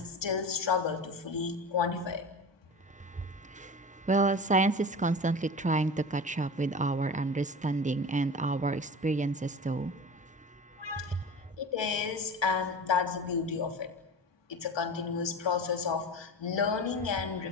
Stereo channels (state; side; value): normal; both; correlation 0.32